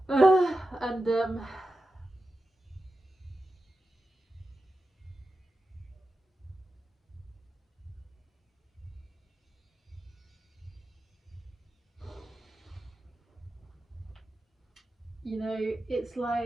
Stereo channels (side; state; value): both; normal; correlation 0.91